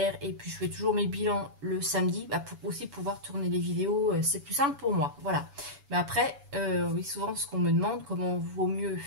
Et puis, je fais toujours mes bilans le samedi pour aussi pouvoir tourner les vidéos. C'est plus simple pour moi. Voilà. Mais après, oui, souvent, ce qu'on me demande, comment vaut mieux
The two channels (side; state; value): left; late; 7.1 ms